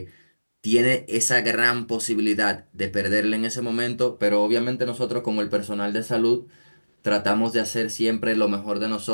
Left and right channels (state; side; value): inverted; both; correlation -1.00